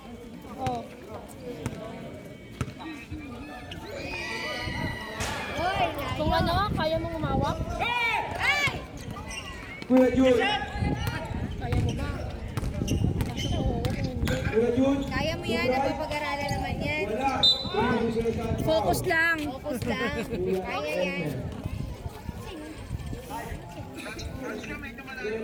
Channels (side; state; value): both; identical; correlation 1.00